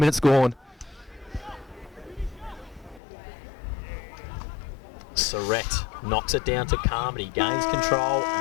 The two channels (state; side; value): drops out; right; at 3.0 s